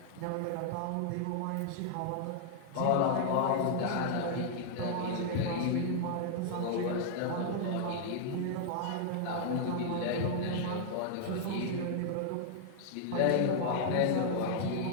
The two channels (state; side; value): different; both; correlation -0.01